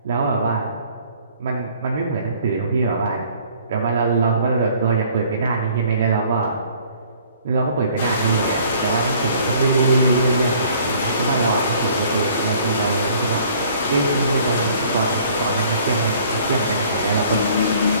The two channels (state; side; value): inverted; both; correlation -0.56